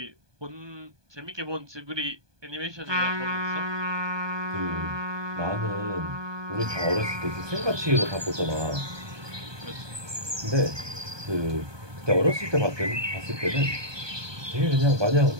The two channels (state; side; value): late; left; 1.2 ms